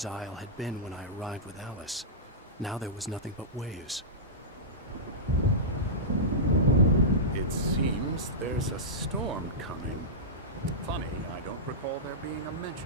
Isle had been when I arrived with Alice. Now there was nothing but waves. It seems there's a storm coming. Funny, I don't recall there being a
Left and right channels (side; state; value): both; normal; correlation -0.16